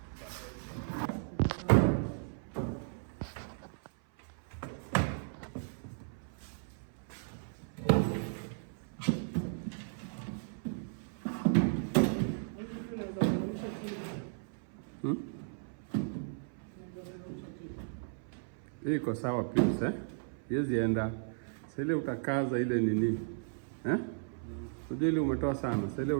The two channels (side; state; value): left; silent; 54 dB below the other